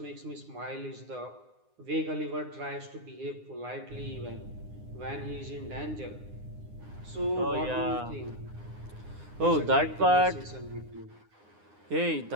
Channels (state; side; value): late; left; 9.8 ms